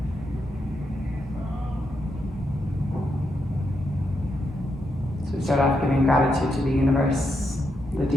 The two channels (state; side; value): normal; both; correlation 0.82